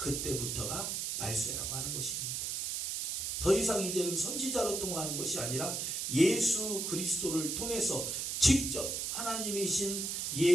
말세라고 하는 것입니다. 더 이상 이제는 선지자로 통하는 것이 아니라 예수 그리스도를 통해서 직접 하나님이신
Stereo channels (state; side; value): noise; right; hiss, 2 dB below the sound